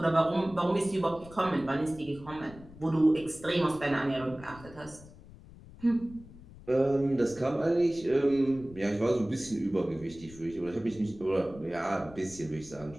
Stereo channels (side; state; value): left; noise; rumble, 19 dB below the sound